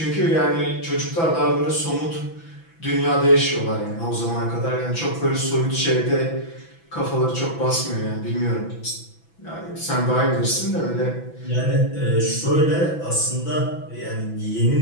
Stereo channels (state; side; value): late; right; 6.0 ms